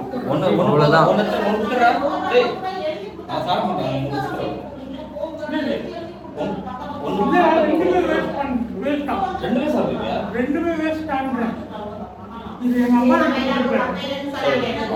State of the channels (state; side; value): identical; both; correlation 1.00